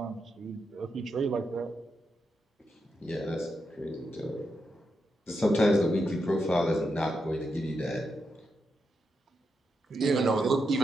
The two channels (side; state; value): both; normal; correlation 0.84